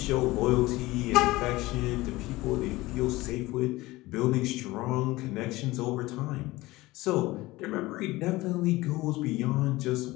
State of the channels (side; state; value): right; quieter; 19.5 dB